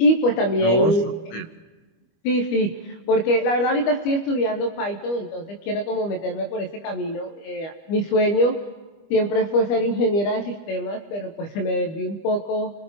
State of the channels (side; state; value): right; late; 25 ms